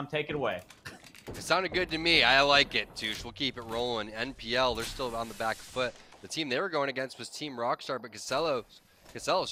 Take it away. It sounded good to me. I like it, Touche. We'll keep it rolling. NPL, they're still on the back foot. The team they were going against was Team Rockstar, but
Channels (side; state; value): both; identical; correlation 1.00